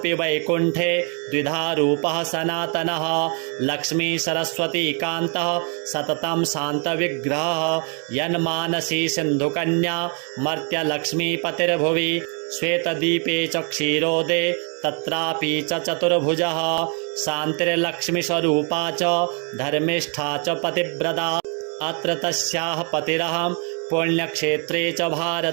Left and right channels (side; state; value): left; quieter; 37.8 dB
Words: वैकुण्ठे द्विधा रूपः सनातनः लक्ष्मी सरस्वती कान्तः सततं शान्तविग्रहः यन्मानसी सिन्धुकन्या मर्त्यलक्ष्मीपतिर्भुवि श्वेतदीपे च क्षीरोदे तत्रापि च चतुर्भुजः शान्तिर्लक्ष्मीस्वरूपा च धर्मिष्ठा च पतिव्रता अत्र तस्याः पतिरहं पुण्यक्षेत्रे च